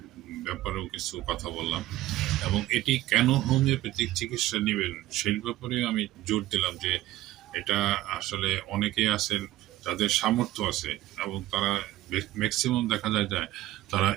ব্যাপারেও কিছু কথা বললাম এবং এটি কেন হোমিওপ্যাথিক চিকিৎসা নেবেন সেই ব্যাপারে আমি জোর দিলাম যে এটা আসলে অনেকেই আছেন যাদের সামর্থ্য আছে এবং তারা ম্যাক্সিমাম দেখা যায় তারা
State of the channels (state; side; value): quieter; left; 15.4 dB